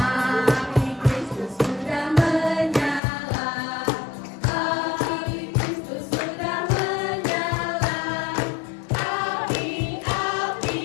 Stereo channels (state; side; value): drops out; right; at 3.0 s